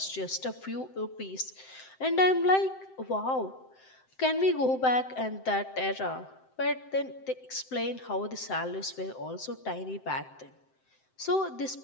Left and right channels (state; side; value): late; right; 7.7 ms